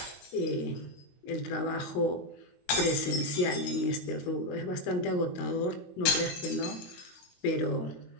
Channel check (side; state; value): right; late; 22 ms